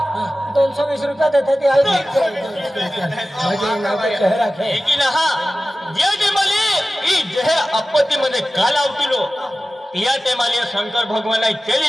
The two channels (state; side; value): normal; both; correlation 0.95